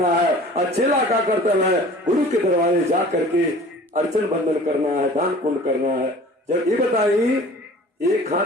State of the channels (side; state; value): both; normal; correlation 0.45